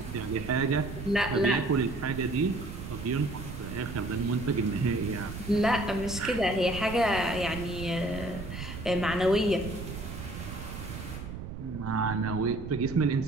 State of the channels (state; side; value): noise; right; rumble, 9 dB below the sound